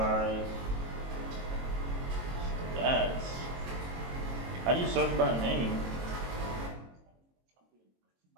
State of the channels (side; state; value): left; late; 22 ms